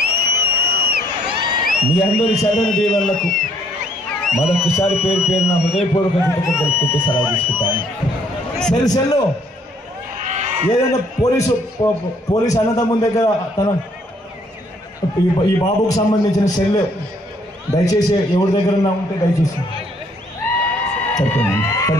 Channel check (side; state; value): both; normal; correlation 0.65